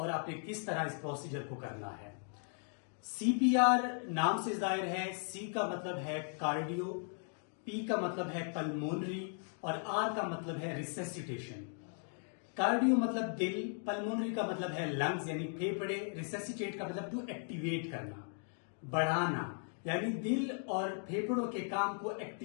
आपने किस तरह इस प्रोसीजर को करना है। सीपीआर नाम से जाहिर है। सी का मतलब है कार्डियो, पी का मतलब है पल्मोनरी और आर का मतलब है रिसेसिटेशन। कार्डियो मतलब दिल, पल्मोनरी का मतलब है लंग्स यानी फेफड़े, रिसेसिटेट का मतलब टू एक्टिवेट करना, बढ़ाना, यानी दिल और फेफड़ों के काम को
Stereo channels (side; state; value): right; silent; 53 dB below the other